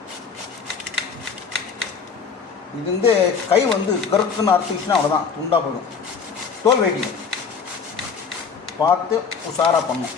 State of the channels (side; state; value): right; quieter; 5.8 dB